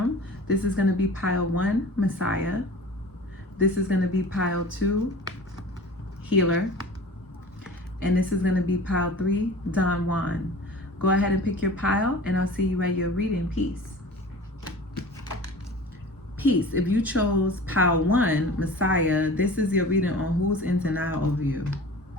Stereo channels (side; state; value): both; normal; correlation 0.40